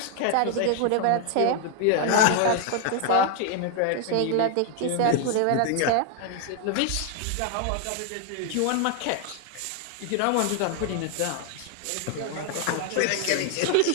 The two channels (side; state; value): both; different; correlation 0.00